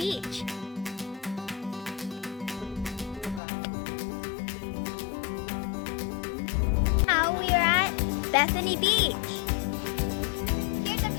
Now we are at Bethany Beach. Here's a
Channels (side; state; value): right; drops out; at 3.4 s